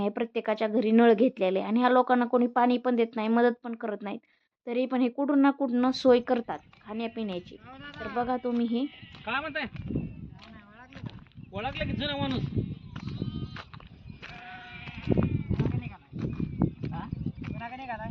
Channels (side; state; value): both; identical; correlation 1.00